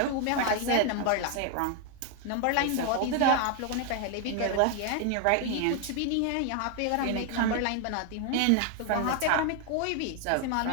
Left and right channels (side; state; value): both; different; correlation 0.01